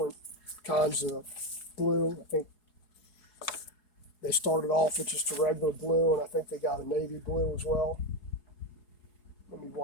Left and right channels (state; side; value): late; right; 4.8 ms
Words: kinds of blue. I think they started off with just a regular blue, and I think they got a navy blue as well. Let me